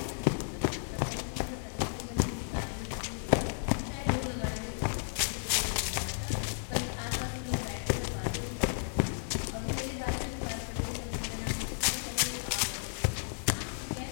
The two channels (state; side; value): silent; right; digital silence